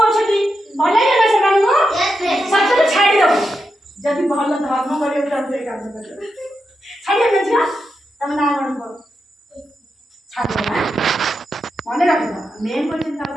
अछनी भल लागे ना से मानु सच्चे छाड़ी दो जदि भल धर्म करे काम कर छाड़िया ना जा तुम ना कौन कर छाड़ ना मन रख मेन क्वेश्चन का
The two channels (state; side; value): normal; both; correlation 0.87